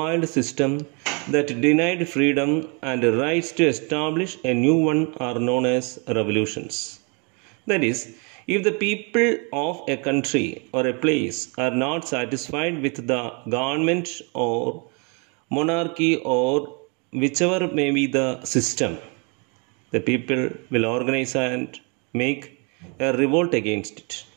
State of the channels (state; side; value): quieter; left; 33.9 dB